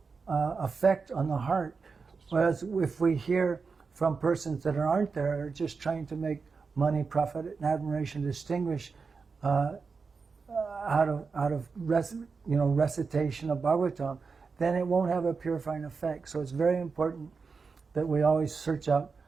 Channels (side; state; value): left; quieter; 4.9 dB